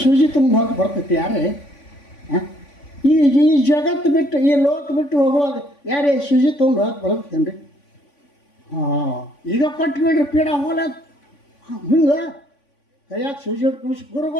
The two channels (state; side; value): late; right; 3.5 ms